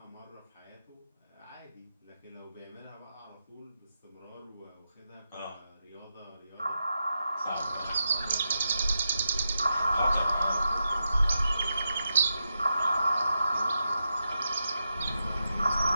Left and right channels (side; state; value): both; inverted; correlation -0.87